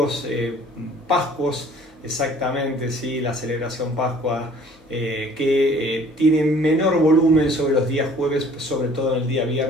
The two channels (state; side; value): normal; both; correlation 0.53